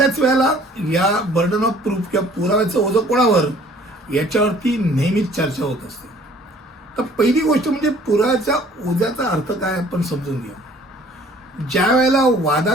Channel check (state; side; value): normal; both; correlation 0.54